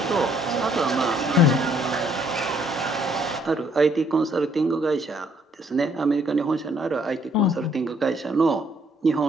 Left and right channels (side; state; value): both; normal; correlation 0.66